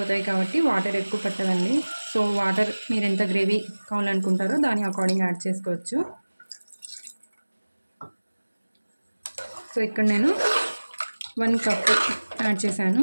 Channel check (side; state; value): both; inverted; correlation -1.00